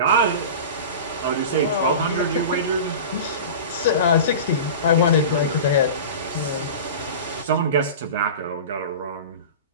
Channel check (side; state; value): both; inverted; correlation -0.32